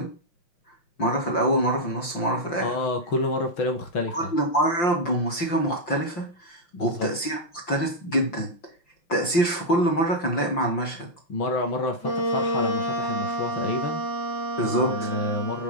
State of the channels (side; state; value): right; late; 5.8 ms